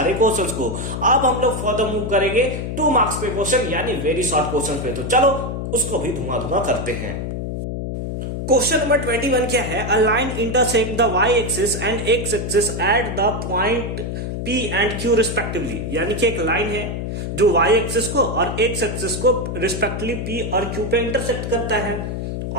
क्वेश्चंस को। अब हम लोग फर्दर मूव करेंगे 2 मार्क्स पे क्वेश्चन यानी वेरी शॉर्ट क्वेश्चन पे। तो चलो उसको भी धुआं करते हैं। क्वेश्चन नंबर 21 क्या है, a line intersect the y axis and x axis at the point P and Q respectively, यानी कि एक लाइन है जो वाई एक्सिस को और एक्स एक्सिस को रिस्पेक्टिवली P और Q पे इंटरसेक्ट करता है,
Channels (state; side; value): noise; left; hum, 4 dB below the sound